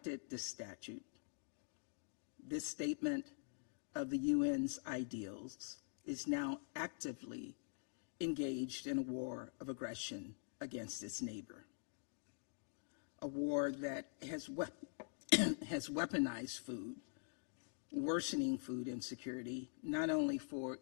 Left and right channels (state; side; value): silent; right; digital silence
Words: this statue, this statement of the UN's ideals, is now actively engaged in a war of aggression against its neighbor. A war that has weaponized food, worsening food insecurity, not only for